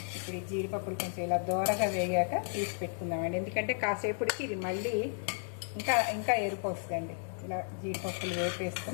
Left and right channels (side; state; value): right; silent; digital silence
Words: ఇప్పుడు ఈ జీడిపప్పులు కొంచెం ఇలా దూరగా వేగాక తీసి పెట్టుకుందామండి. ఎందుకంటే కాసేపటికి ఇది మళ్ళీ ఇంకా ఎరుపు వస్తుందండి. ఇలా జీడిపప్పులు